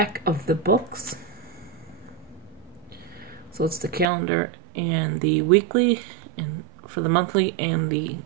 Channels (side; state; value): left; drops out; at 4.0 s